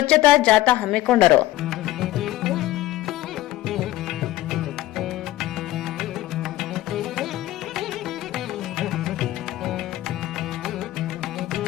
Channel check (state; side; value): quieter; right; 15.5 dB